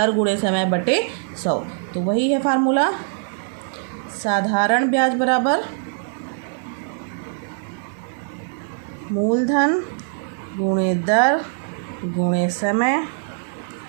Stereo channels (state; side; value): silent; left; 60 dB below the other